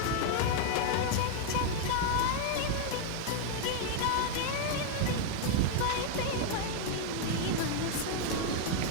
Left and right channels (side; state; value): both; different; correlation 0.00